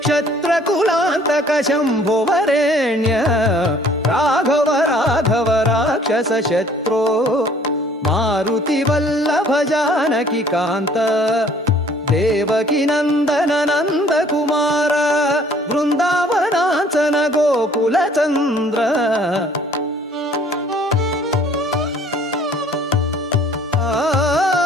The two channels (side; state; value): both; normal; correlation 0.56